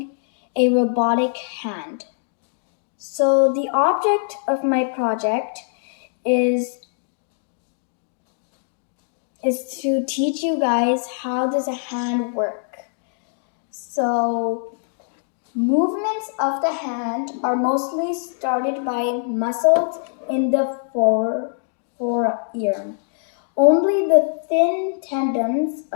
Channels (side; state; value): right; silent; digital silence